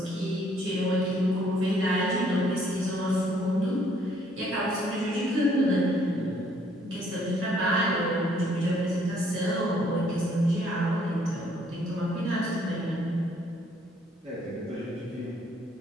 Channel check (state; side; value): normal; both; correlation 0.65